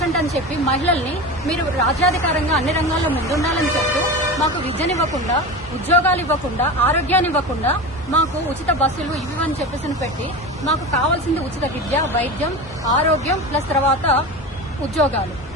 అని చెప్పి మహిళల్ని మీరు రాజ్యాధికారంగా అన్ని రంగాల్లో ముందుండాలని చెప్తూ మాకు విద్యనివ్వకుండా, ఉద్యోగాలు ఇవ్వకుండా, ఆరోగ్యాన్ని ఇవ్వకుండా, మాకు ఉచిత బస్సులు ఇవి అని చెప్పేసి పెట్టి మాకు కావాల్సింది ఉచిత విద్య, వైద్యం, ఆరోగ్యం ప్లస్ తర్వాత ఉద్యోగాలు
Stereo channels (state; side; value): normal; both; correlation 0.27